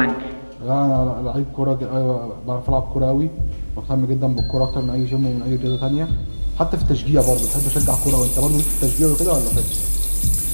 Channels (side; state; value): both; inverted; correlation -1.00